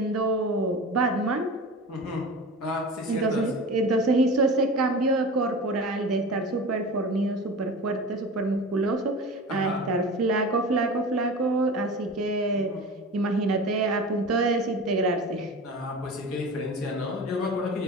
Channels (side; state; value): both; normal; correlation 0.33